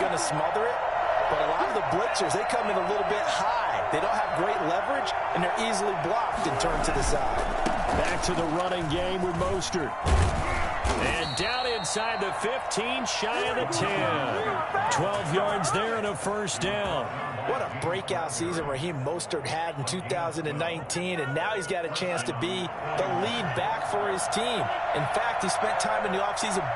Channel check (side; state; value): both; identical; correlation 1.00